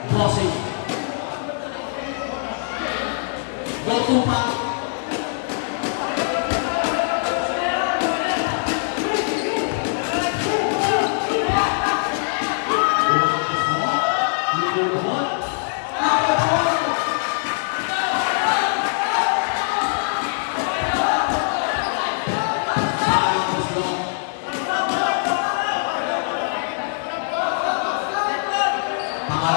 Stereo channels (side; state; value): right; silent; digital silence